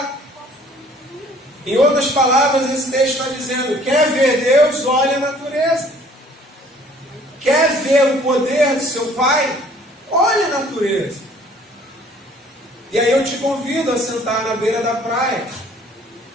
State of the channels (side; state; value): both; normal; correlation 0.56